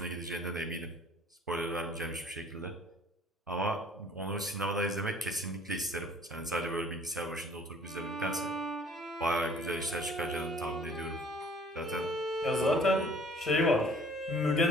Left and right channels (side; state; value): both; normal; correlation 0.54